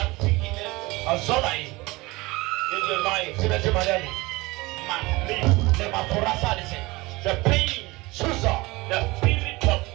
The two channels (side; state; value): left; quieter; 22.3 dB